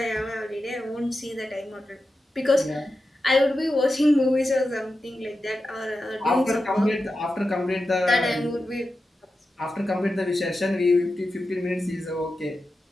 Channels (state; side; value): normal; both; correlation 0.91